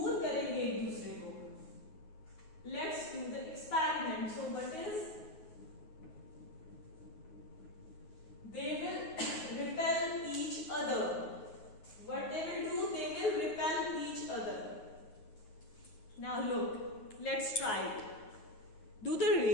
करेंगे एक दूसरे को. Let's do the experiment. So what is? They will repel each other. What they will do? They will repel each other. Now look, let's try it. Do they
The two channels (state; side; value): late; right; 9.5 ms